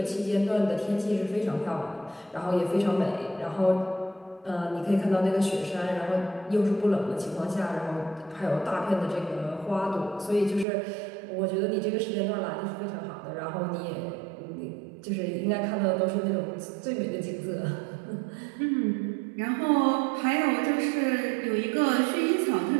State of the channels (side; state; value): left; drops out; at 10.7 s